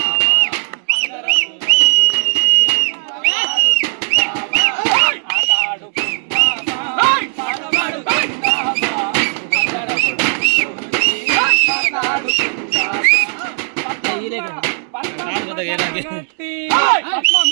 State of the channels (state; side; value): silent; left; digital silence